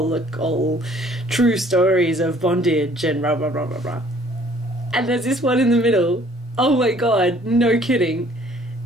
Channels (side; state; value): both; normal; correlation 0.58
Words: true stories of bondage and blah blah blah blah blah. And there's this one in the middle, oh my god, no kidding,